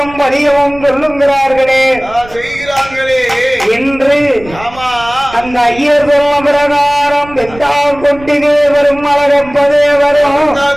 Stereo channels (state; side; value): noise; right; rumble, 18 dB below the sound